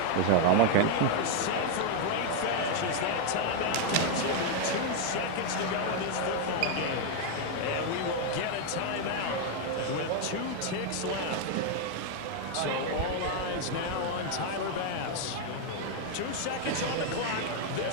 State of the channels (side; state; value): both; different; correlation 0.01